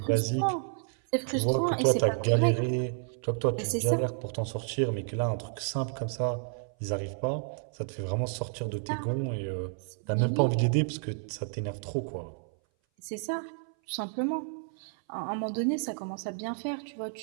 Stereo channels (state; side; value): silent; left; 57 dB below the other